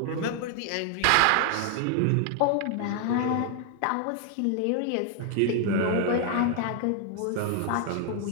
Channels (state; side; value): different; both; correlation 0.00